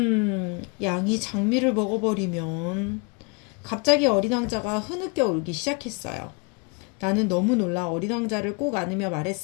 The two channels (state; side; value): quieter; right; 32.2 dB